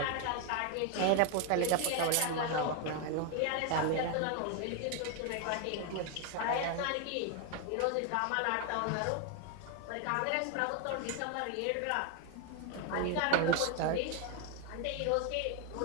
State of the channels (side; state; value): both; different; correlation 0.01